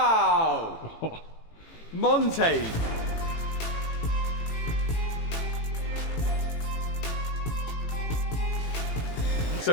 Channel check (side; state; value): right; late; 18 ms